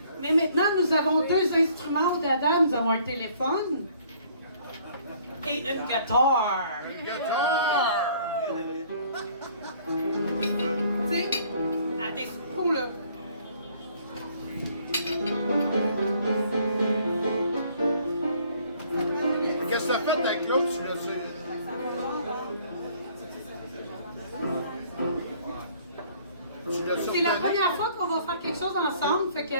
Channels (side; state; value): both; inverted; correlation -0.59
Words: Mais maintenant, nous avons deux instruments au dada. Nous avons un téléphone et une guitare. Guitare! Tu sais, à des coups, là. Qu'est-ce que t'as fait avec l'autre? Tu l'as su? C'est la première fois qu'on va faire quelque chose ensemble, fait que